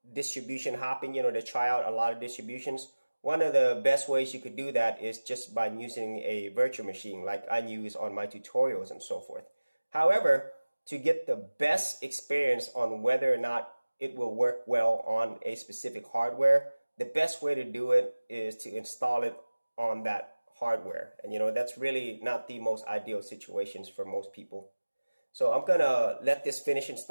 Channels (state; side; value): inverted; both; correlation -1.00